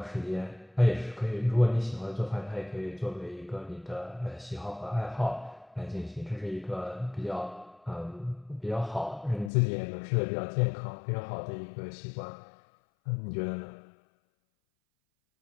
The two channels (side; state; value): right; drops out; at 9.5 s